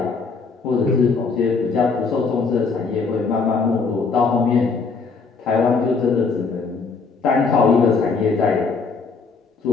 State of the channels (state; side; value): quieter; right; 4.7 dB